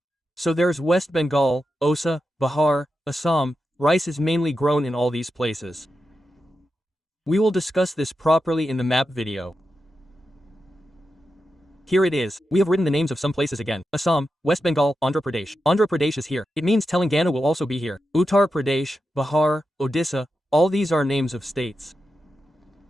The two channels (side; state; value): both; normal; correlation 0.89